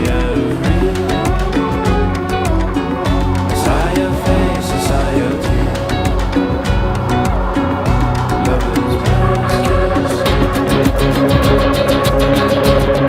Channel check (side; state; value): both; identical; correlation 1.00